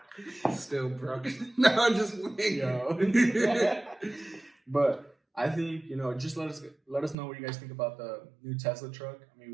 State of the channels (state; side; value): drops out; left; at 7.2 s